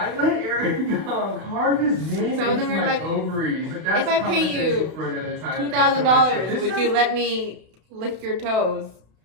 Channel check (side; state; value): left; late; 32 ms